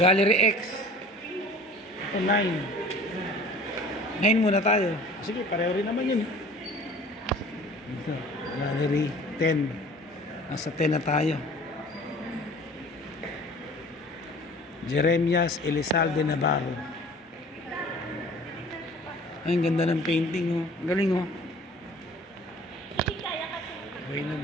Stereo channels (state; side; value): normal; both; correlation 0.47